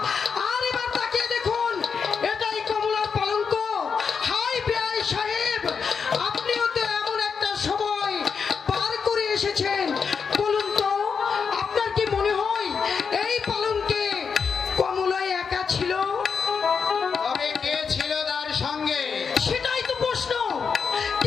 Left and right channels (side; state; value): right; quieter; 6.0 dB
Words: আর এবার তাকিয়ে দেখুন, এটাই কমলার পালঙ্ক। হাই বেআই সাহেব, আপনিও তো এমন একটা সময় পার করে এসেছেন। বলুন তো, আপনার কি মনে হয় এই পালঙ্কে কমলাই একা ছিল? তবে কে ছিল তার সঙ্গে? সেটাই তো প্রশ্ন।